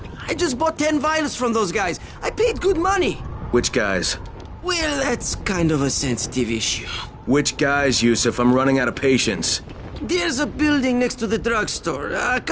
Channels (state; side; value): identical; both; correlation 1.00